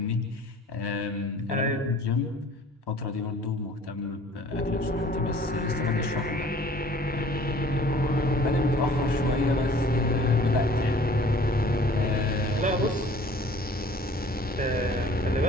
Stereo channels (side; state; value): both; normal; correlation 0.51